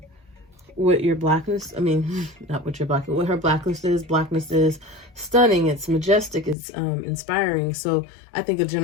what your blackness, I mean, not what your blackness, what her blackness is stunning, it's majestic, it's inspiring. So I think of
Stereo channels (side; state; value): right; drops out; at 6.6 s